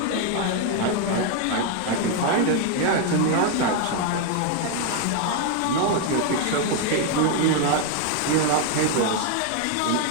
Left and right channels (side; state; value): both; different; correlation 0.01